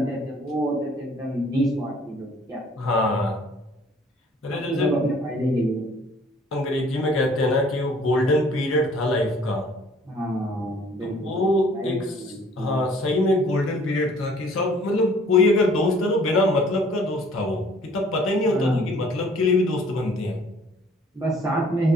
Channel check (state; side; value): normal; both; correlation 0.56